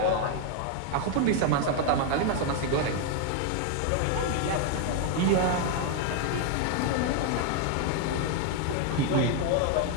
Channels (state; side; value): different; both; correlation 0.01